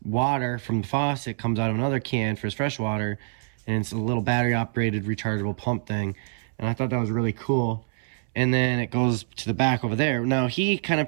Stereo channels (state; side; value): silent; left; 61 dB below the other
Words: water from the faucet comes out of another can for his fresh water, and it's a little battery operated rechargeable pump thing. And I thought that was really cool. And then it goes to the back over there. Now he kind of